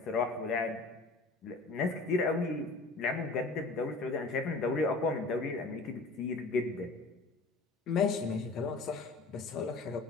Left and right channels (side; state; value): right; quieter; 3.5 dB